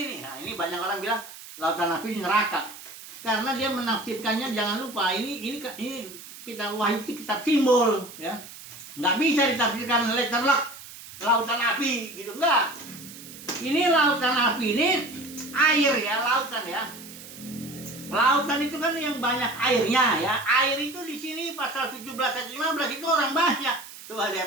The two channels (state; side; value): noise; right; hiss, 16 dB below the sound